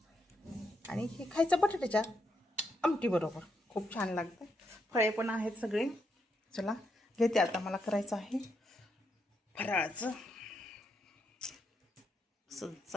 आणि हे खायचं बटाट्याच्या आमटी बरोबर, खूप छान लागतं. फळे पण आहेत सगळे. चला घेते आता, मला करायचं आहे फराळाचं. असं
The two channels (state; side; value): normal; both; correlation 0.80